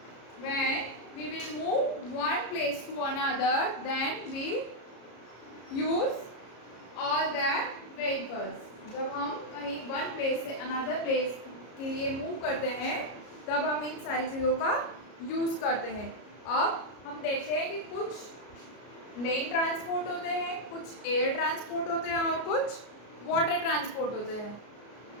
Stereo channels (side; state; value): right; late; 33 ms